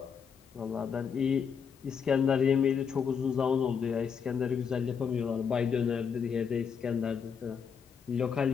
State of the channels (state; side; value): quieter; right; 6.7 dB